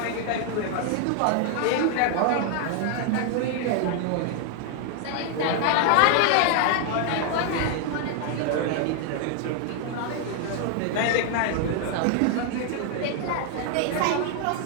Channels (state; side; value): different; both; correlation 0.00